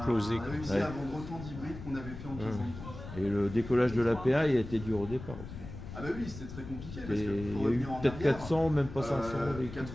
réussi à vendre autant d'hybrides qu'on avait fait en 15 ans de temps. Et le décollage de l'APA, il a été dur au départ aussi. Ah bah oui, c'était très compliqué. Parce que il y a eu peut-être 400, même pas 500.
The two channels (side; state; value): left; noise; rumble, 11 dB below the sound